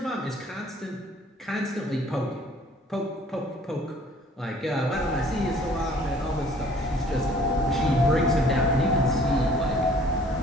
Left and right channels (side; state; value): both; normal; correlation 0.55